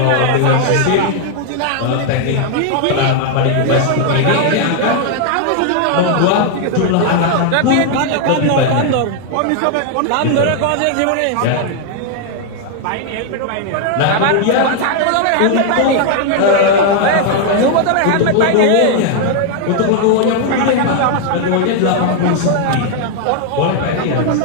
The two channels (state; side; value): different; both; correlation 0.00